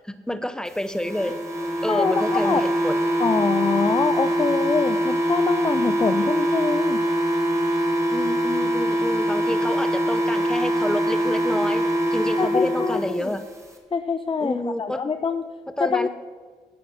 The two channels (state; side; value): normal; both; correlation 0.82